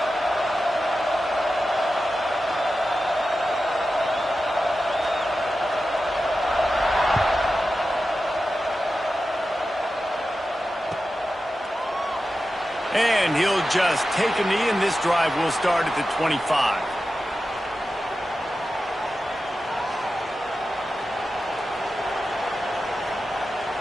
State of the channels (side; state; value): both; normal; correlation 0.92